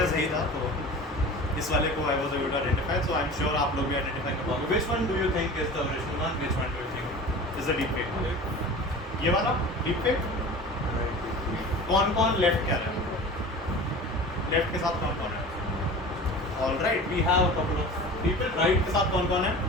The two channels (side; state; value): both; normal; correlation 0.37